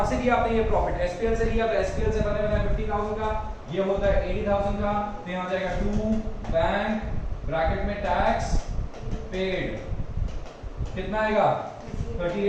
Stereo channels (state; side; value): identical; both; correlation 1.00